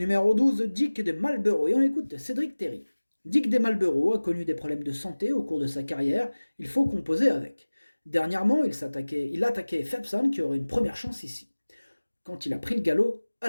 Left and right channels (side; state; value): both; inverted; correlation -1.00